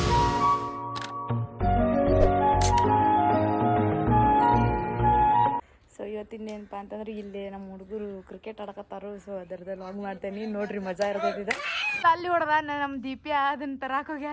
So ಇವತ್ತಿನೇನಪ್ಪ ಅಂತಂದ್ರೆ ಇಲ್ಲಿ ನಮ್ಮ ಹುಡುಗರು ಕ್ರಿಕೆಟ್ ಆಡಕತ್ತಾರು. ಸೊ ಅದರದ್ದು ಲಾಗ್ ಮಾಡ್ತೇನೆ, ನೋಡ್ರಿ ಮಜಾ ಇರ್ತೈತಿದೆ. ಅಲ್ಲಿ ಹೊಡೆದ ನಮ್ಮ ದೀಪ್ಯ ಅದನ್ನ ತರಾಕ್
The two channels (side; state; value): both; identical; correlation 1.00